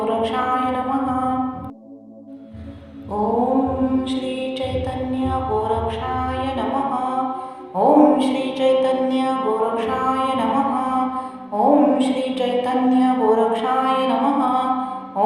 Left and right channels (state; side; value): identical; both; correlation 1.00